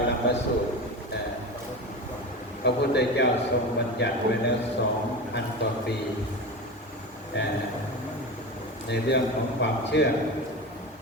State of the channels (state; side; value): normal; both; correlation 0.26